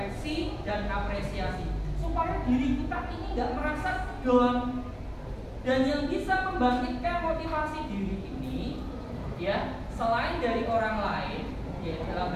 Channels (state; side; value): identical; both; correlation 1.00